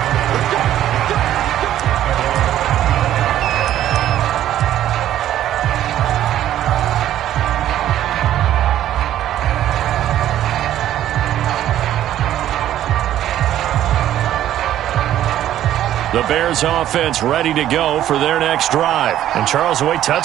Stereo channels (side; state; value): left; quieter; 12.2 dB